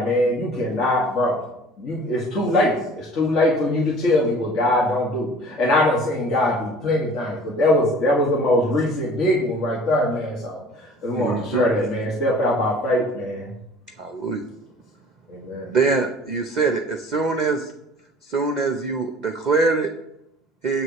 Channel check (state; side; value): normal; both; correlation 0.47